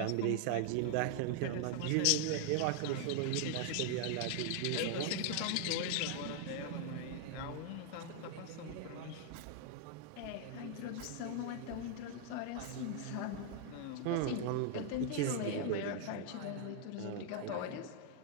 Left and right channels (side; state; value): both; different; correlation 0.00